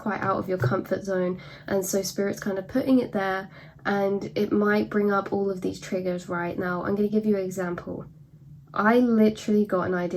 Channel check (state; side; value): identical; both; correlation 1.00